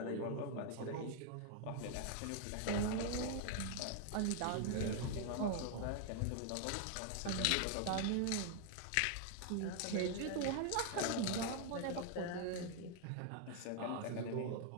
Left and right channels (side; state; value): both; different; correlation 0.00